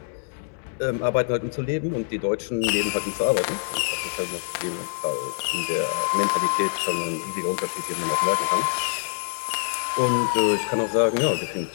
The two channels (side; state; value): right; silent; digital silence